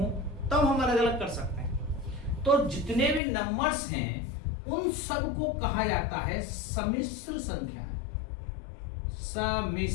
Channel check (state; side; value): drops out; right; at 3.2 s